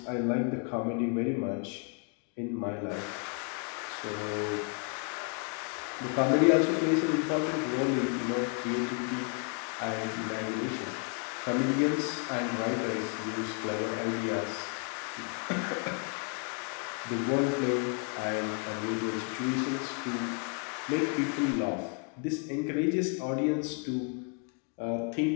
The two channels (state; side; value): quieter; right; 38.2 dB